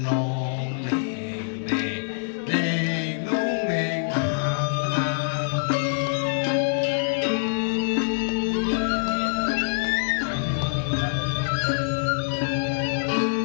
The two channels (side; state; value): right; silent; digital silence